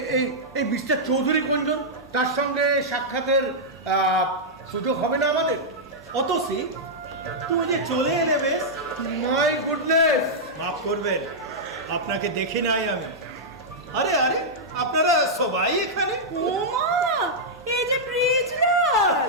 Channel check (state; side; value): normal; both; correlation -0.08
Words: এই এই মিস্টার চৌধুরী কোনজন? তার সঙ্গে সাক্ষাতের সুযোগ হবে না আমাদের? অতসী, তুমি যে চলে এলে বেশ। My goodness! মাফ করবেন, আপনাকে দেখি নাই আমি। আরে আরে, আপনারা সবাই এখানে? ওমা, এই যে ব্রিজলাল।